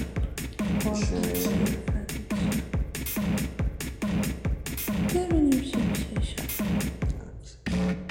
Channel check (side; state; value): both; identical; correlation 1.00